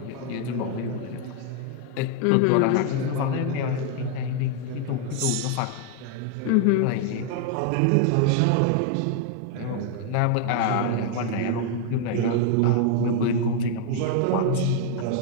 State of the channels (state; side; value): different; both; correlation 0.00